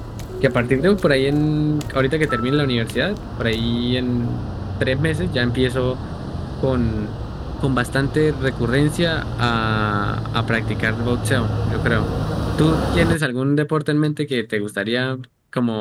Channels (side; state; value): both; identical; correlation 1.00